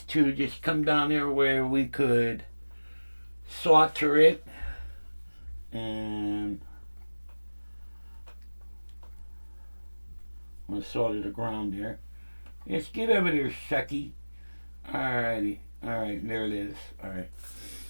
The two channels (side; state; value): both; inverted; correlation -1.00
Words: to just come down here where we could solder it. And I'm going to solder the ground there. Let's get over there, Shucky. Alrighty. Alright, there it is. Alright.